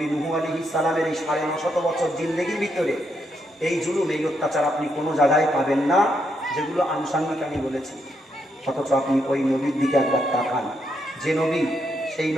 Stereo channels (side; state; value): both; normal; correlation 0.78